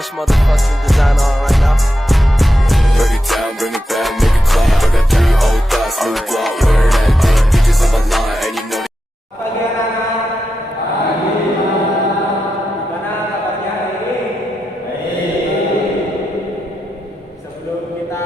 motherfucking design on right now. Break it down, bring it back, make it clap. I got 3 old thoughts, new block, where that thing. Bitches on my line, and you know. Pagi anak-anak. Pagi. Gimana kabarnya hari ini? Baik. Sebelum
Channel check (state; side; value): normal; both; correlation 0.88